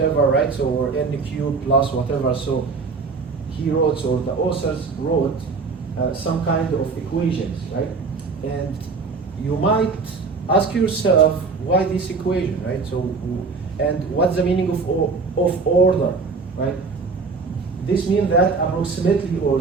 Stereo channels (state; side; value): quieter; left; 4.5 dB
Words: right? So, or n cubed plus whatever. So he wrote, or the authors wrote some kind of equations, right? And you might ask yourself, why this equation, right? So, and what's the meaning of order, right? This means that approximately, or